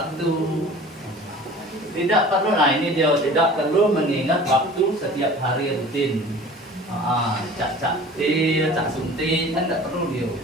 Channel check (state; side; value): normal; both; correlation 0.43